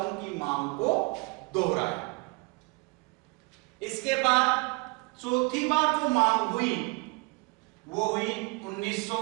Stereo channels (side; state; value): left; quieter; 28.1 dB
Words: की मांग को दोहराया। इसके बाद चौथी बार जो मांग हुई वो हुई